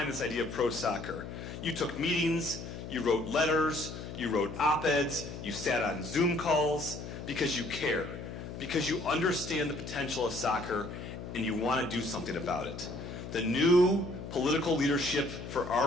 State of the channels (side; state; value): left; noise; hum, 9 dB below the sound